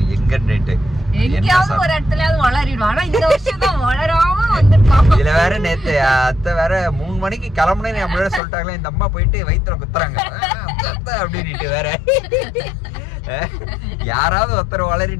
எங்கன்னுட்டு. இதுல வேற நேத்து அத்தை வேற 3 மணிக்கு கிளம்புனேன்னு அப்படியே சொல்லிட்டாங்களே, இந்த அம்மா போயிட்டு வயிற்றுல குத்துறாங்க அப்படின்ட்டு வேற. யாராவது ஒருத்தர்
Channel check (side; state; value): right; drops out; at 8.4 s